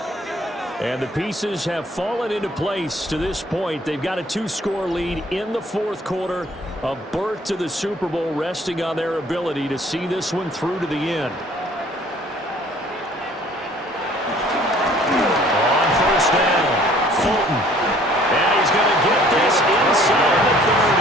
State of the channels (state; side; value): normal; both; correlation 0.56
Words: And the pieces have fallen into place to this point. They've got a 2-score lead in the 4th quarter. A berth to the Super Bowl resting on their ability to see this one through to the end. On first down, Fulton. And he's going to get this inside the